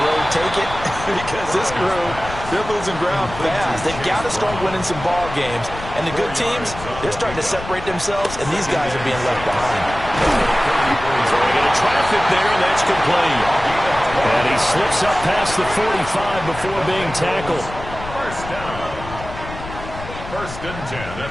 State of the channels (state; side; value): noise; left; rumble, 12 dB below the sound